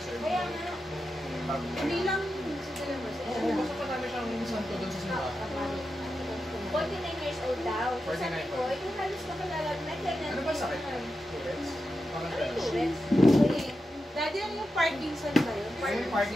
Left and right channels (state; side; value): normal; both; correlation 0.89